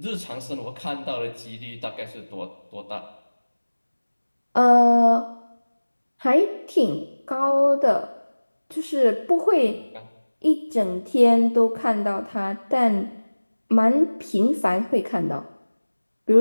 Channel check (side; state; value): both; inverted; correlation -1.00